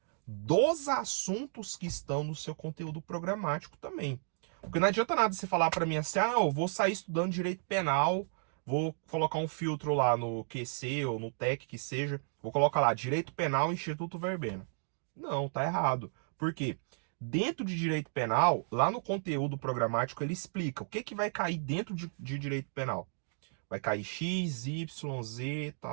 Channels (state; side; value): silent; left; digital silence